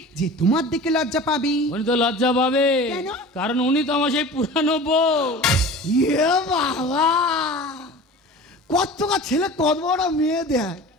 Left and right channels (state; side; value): normal; both; correlation 0.37